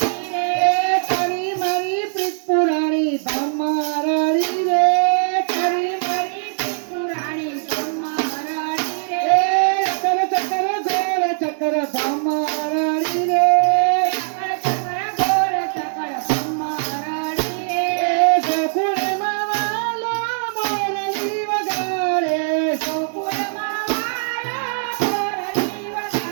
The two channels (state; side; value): silent; left; digital silence